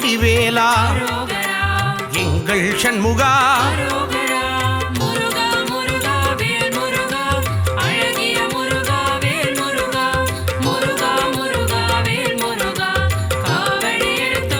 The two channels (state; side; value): identical; both; correlation 1.00